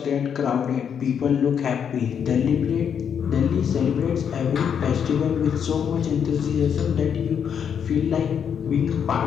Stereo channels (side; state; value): right; quieter; 7.8 dB